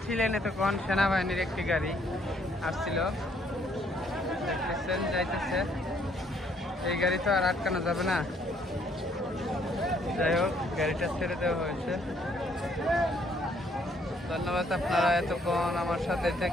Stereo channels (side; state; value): both; normal; correlation 0.67